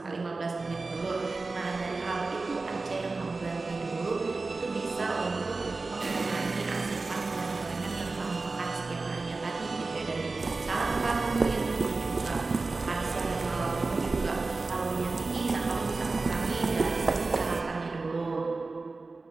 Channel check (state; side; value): quieter; left; 3.7 dB